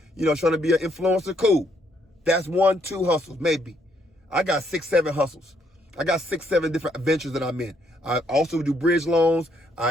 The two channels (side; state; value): both; normal; correlation 0.71